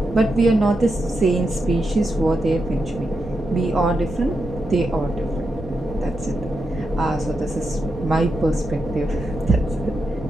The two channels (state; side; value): normal; both; correlation 0.86